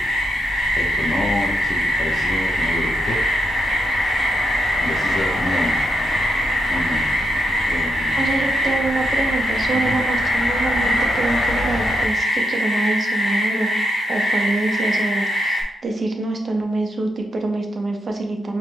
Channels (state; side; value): normal; both; correlation 0.82